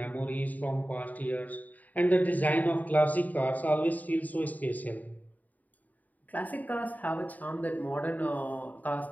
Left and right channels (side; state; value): right; late; 0.078 ms